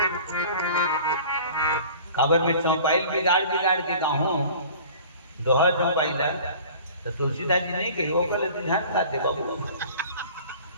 खबर में चौपाइल बिगाड़ के कहूँ दोहा चौपाइला तो तुलसीदास जी नहीं कही, वो कल ध्यान गाते बाबू,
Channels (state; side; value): inverted; both; correlation -0.45